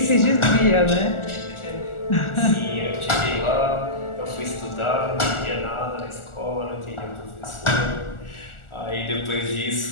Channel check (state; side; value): late; right; 1.4 ms